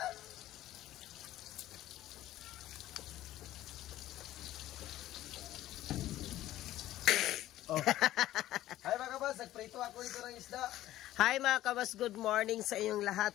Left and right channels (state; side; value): quieter; right; 14.3 dB